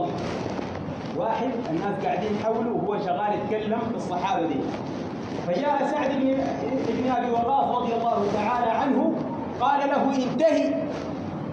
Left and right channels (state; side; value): identical; both; correlation 1.00